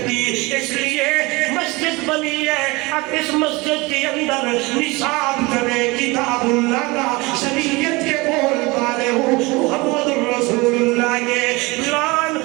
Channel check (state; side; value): quieter; left; 24.0 dB